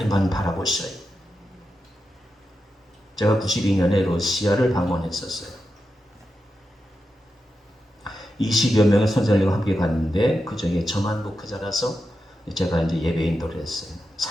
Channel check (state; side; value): normal; both; correlation 0.89